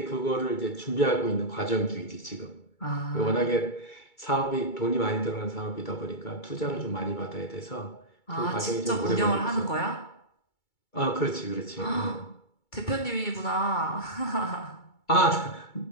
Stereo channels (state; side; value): late; right; 2.3 ms